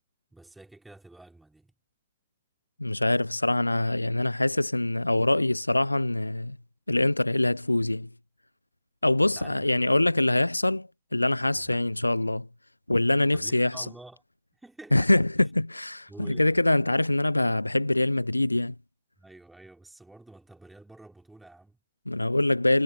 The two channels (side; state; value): both; inverted; correlation -1.00